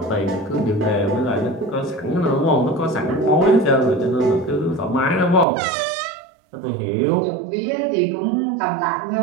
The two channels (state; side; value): drops out; left; at 5.5 s